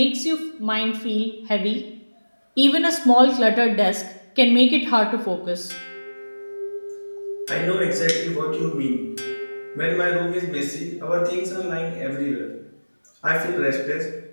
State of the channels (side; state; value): both; inverted; correlation -1.00